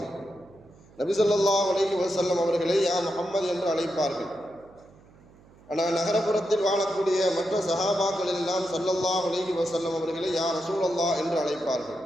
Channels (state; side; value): noise; right; hum, 26 dB below the sound